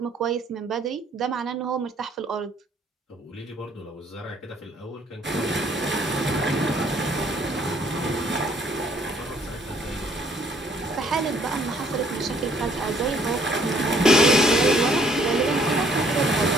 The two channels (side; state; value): both; normal; correlation 0.62